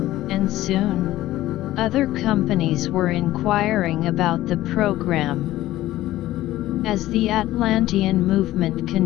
soon, other companies were inquiring about the program. As the Atlantean movement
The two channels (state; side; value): quieter; right; 15.4 dB